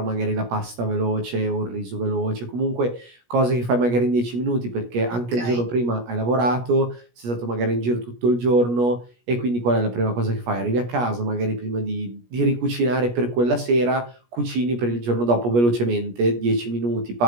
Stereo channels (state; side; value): late; left; 17 ms